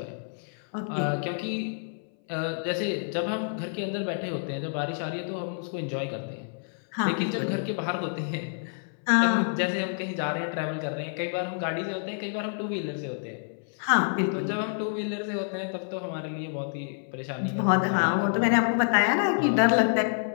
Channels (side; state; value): right; silent; 59 dB below the other